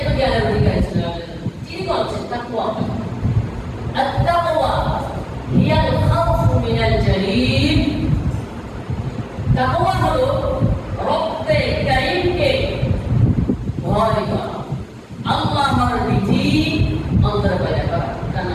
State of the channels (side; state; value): both; identical; correlation 1.00